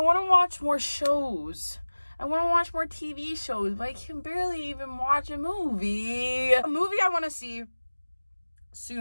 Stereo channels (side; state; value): both; inverted; correlation -1.00